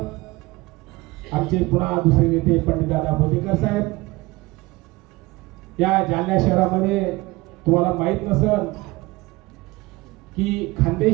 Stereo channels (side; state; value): left; quieter; 21.4 dB